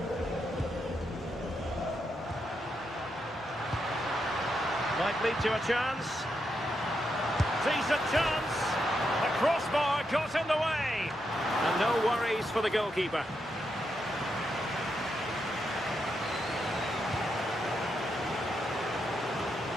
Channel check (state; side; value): normal; both; correlation 0.82